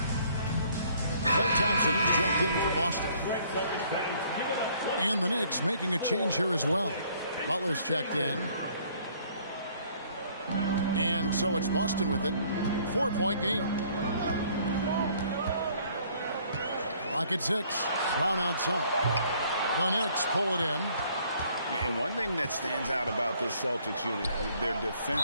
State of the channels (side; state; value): both; inverted; correlation -0.61